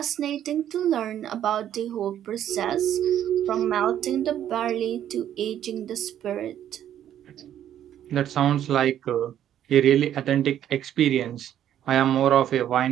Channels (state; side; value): quieter; left; 10.8 dB